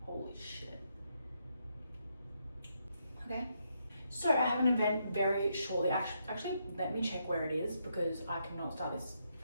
Holy shit. Okay. So I have an event very shortly. Actually, let me check where it is because I cannot start this.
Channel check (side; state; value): both; inverted; correlation -0.79